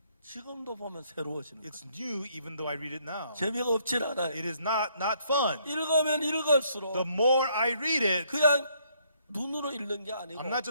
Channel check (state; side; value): inverted; both; correlation -0.68